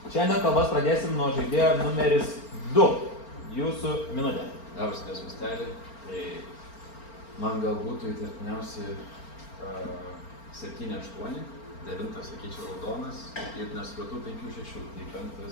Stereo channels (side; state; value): right; late; 4.4 ms